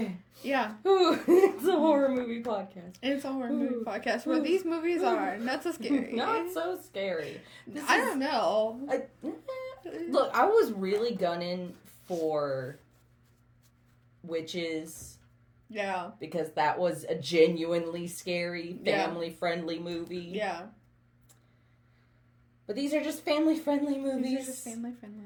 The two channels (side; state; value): both; identical; correlation 1.00